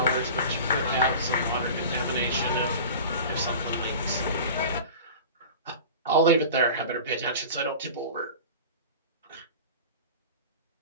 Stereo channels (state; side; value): inverted; both; correlation -0.36